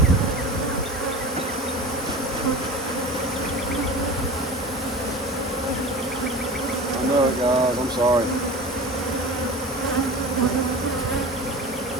I know it, guys. I'm sorry.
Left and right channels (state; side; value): normal; both; correlation 0.34